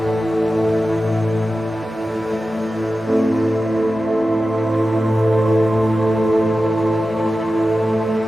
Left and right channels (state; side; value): normal; both; correlation 0.93